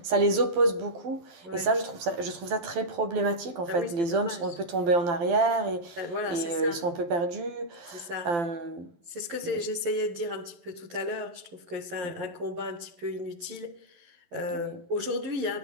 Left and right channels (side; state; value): left; late; 12 ms